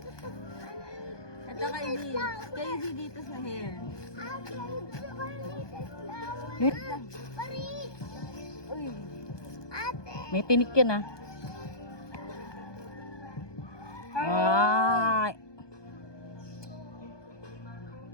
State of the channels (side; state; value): right; late; 1.2 ms